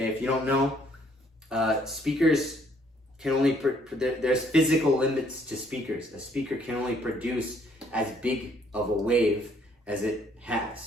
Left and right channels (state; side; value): normal; both; correlation 0.65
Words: if you don't know, speakers can only, there's physical limits to speakers. A speaker can only produce as big of a wave as it